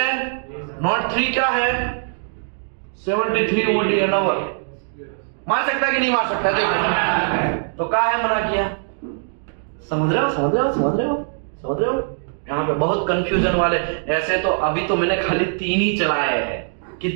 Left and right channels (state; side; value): silent; left; digital silence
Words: नॉट 3 क्या है? 73 OD एन आवर। मार सकता है कि नहीं मार सकता है? देखो तो क्या है, मना किया। समझ रहे हो? यहाँ पे बहुत कंफ्यूजन वाले। ऐसे तो अभी तो मैंने खाली 3 ही चलाए हैं।